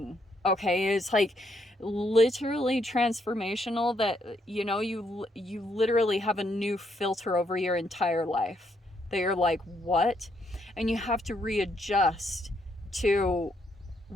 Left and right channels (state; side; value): normal; both; correlation 0.74